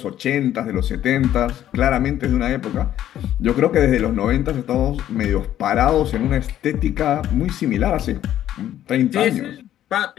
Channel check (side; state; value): right; quieter; 11.9 dB